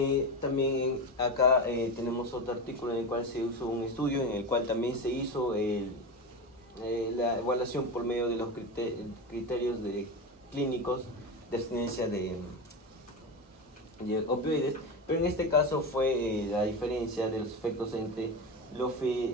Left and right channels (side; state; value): both; normal; correlation 0.20